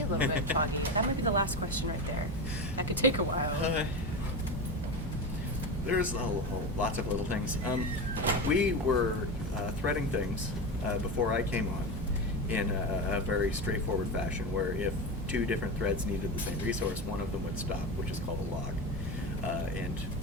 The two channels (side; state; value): both; normal; correlation 0.21